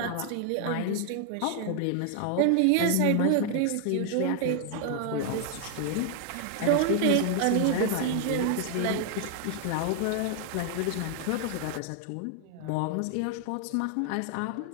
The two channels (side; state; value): both; different; correlation 0.00